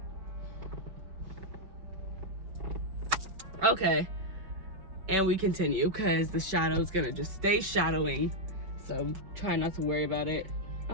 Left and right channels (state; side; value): late; left; 5.2 ms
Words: Okay, and we continue because the shadow is gonna just stay shadowing, so try not to worry about it.